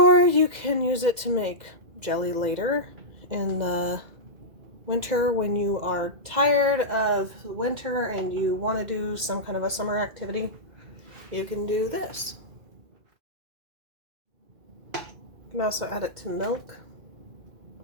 you can use it to make jelly later in the winter when you are tired of winter and you want to do some kind of a summer activity. You can do this. You can also add it to milk,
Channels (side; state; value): left; late; 2.5 ms